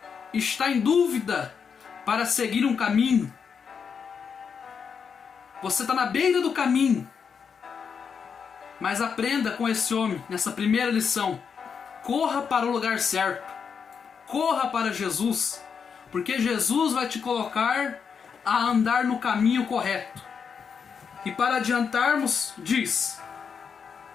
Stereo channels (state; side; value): quieter; right; 6.4 dB